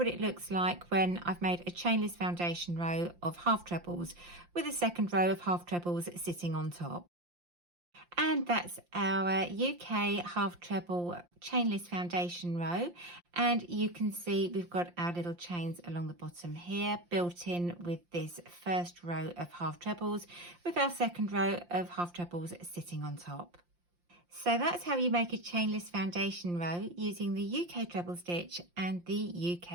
it looks like when I've made a chainless foundation row of half trebles with a second row of half trebles sitting on top. And that's our UK half treble chainless foundation row, and you can see we've got our little chains along the bottom here built in with this first row of half trebles with our second row of half trebles sitting on top. So that's how you make a chainless foundation row using the UK treble stitch and the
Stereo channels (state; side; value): late; left; 5.7 ms